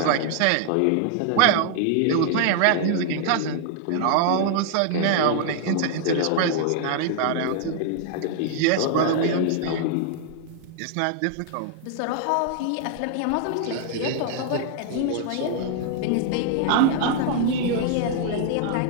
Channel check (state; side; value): different; both; correlation 0.00